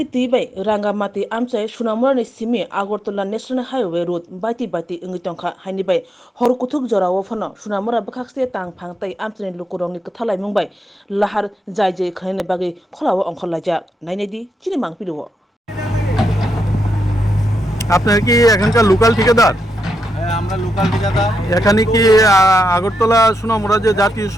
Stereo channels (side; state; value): both; normal; correlation 0.83